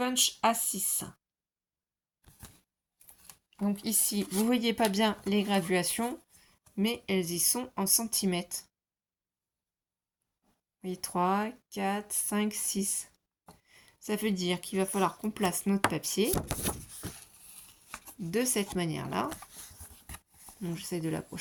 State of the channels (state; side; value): identical; both; correlation 1.00